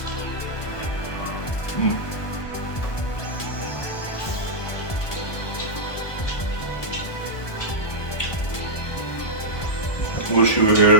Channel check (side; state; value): right; late; 1.2 ms